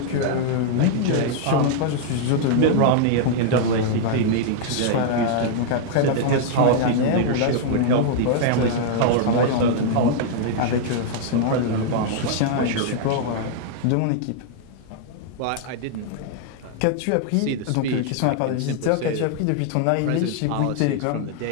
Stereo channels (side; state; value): both; different; correlation -0.01